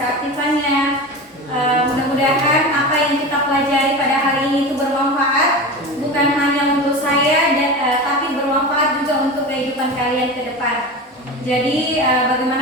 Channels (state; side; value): normal; both; correlation 0.28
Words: keaktifannya. Mudah-mudahan apa yang kita pelajari pada hari ini itu bermanfaat, bukan hanya untuk saya, tapi bermanfaat juga untuk kehidupan kalian ke depan. Jadi